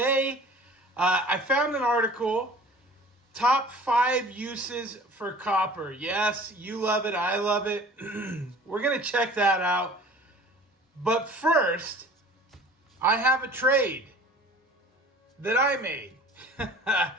I found an article, top 5 uses for copper. Yes, you love it, I love it. We're going to check that out. But first, I have a trade that I made.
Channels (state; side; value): normal; both; correlation 0.45